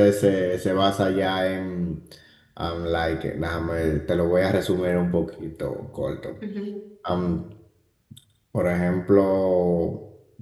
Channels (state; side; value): identical; both; correlation 1.00